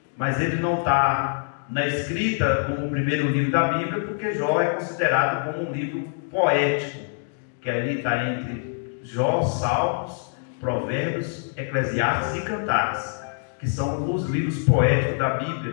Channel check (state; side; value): silent; right; digital silence